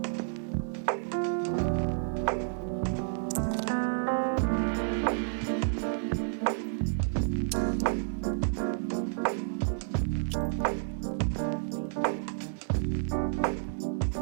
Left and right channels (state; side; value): silent; left; digital silence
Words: "You okay?" The girl didn't look at him right away. She tightened her grip around herself like she could fold her way deeper into that coat. "I'm fine," she murmured, but the words were so faint that they barely reached him. He